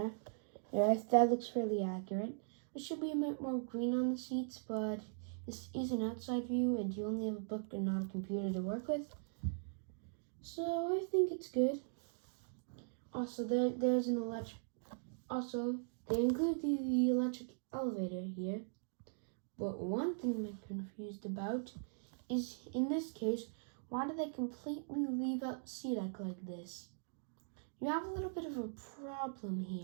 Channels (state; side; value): silent; left; digital silence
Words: Yeah, that looks fairly accurate. There should be a bit more green on the seats, but this is an outside view and you only have a book and not a computer to work with. So I think it's good. Also, there's an electric. Also, they include the electric elevator here. But one thing I'm confused about is, in this case, why do they completely leave out SeaDeck like this? You have a little bit of a problem